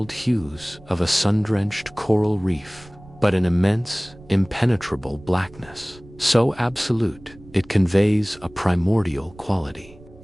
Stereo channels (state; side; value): noise; right; rumble, 22 dB below the sound